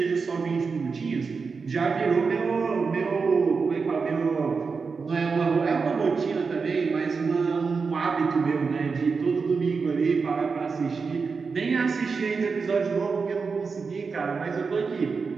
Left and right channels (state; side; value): quieter; left; 4.9 dB